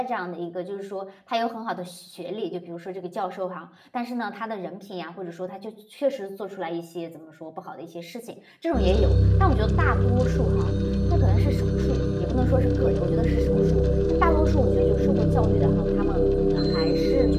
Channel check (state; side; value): identical; both; correlation 1.00